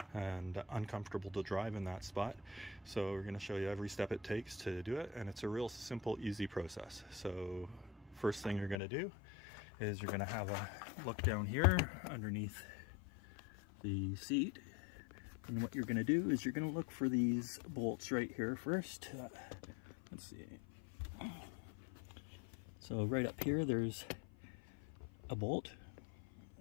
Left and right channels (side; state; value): right; drops out; at 8.8 s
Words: and uncomfortable to drive in that spot. So we're going to show you every step it takes to do it, and it's a real simple, easy process. So first thing you're going to do is you're going to have a look down here underneath the seat. And what you're going to do is you're going to look for these bolts right here first. Let's see. So right up here there's a bolt,